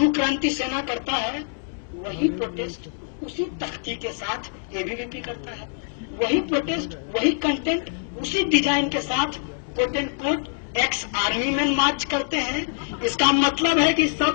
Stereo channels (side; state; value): right; silent; digital silence